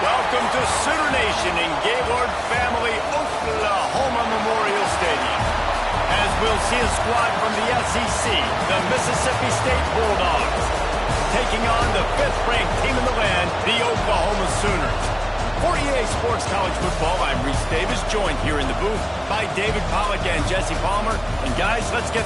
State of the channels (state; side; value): identical; both; correlation 1.00